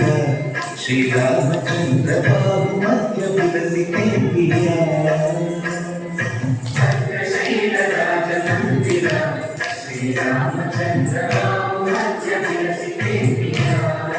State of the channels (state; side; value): identical; both; correlation 1.00